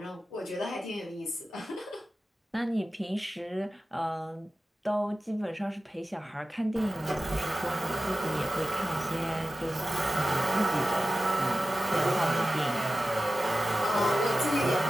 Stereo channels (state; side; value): normal; both; correlation 0.94